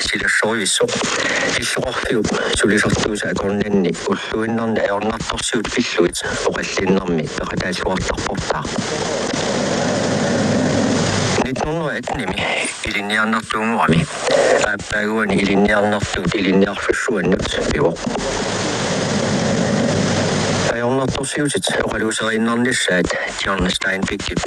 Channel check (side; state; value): both; identical; correlation 1.00